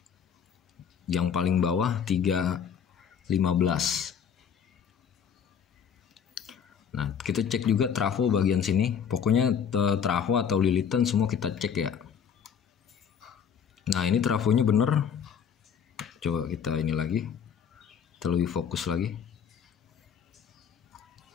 Yang paling bawah 3,15. Nah kita cek juga trafo bagian sini. Pokoknya trafo atau lilitan semua kita cek ya. Nah ini trafonya bener. Coba kita ini lagi, kita lebih fokus lagi.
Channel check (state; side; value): quieter; right; 7.7 dB